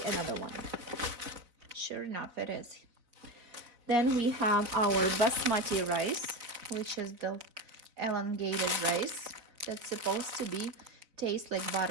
another one. Sure enough, it is. Then we have our basmati rice, which is the elongated rice that's supposed to be taste like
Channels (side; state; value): left; late; 4.0 ms